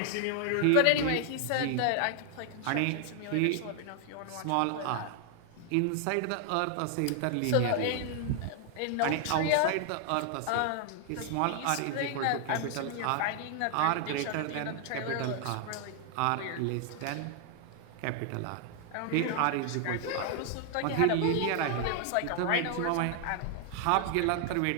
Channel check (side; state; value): both; different; correlation 0.00